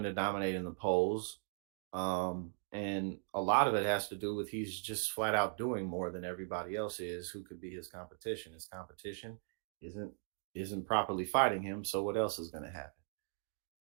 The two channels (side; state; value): left; silent; 52 dB below the other